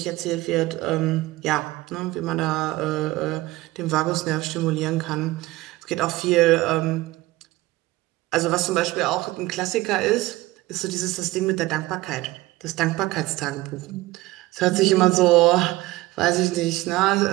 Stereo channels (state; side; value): quieter; left; 18.9 dB